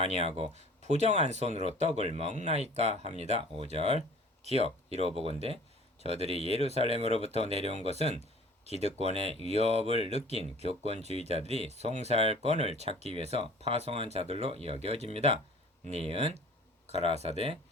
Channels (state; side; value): normal; both; correlation 0.48